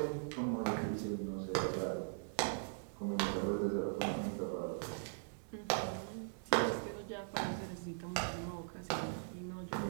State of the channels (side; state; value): left; silent; digital silence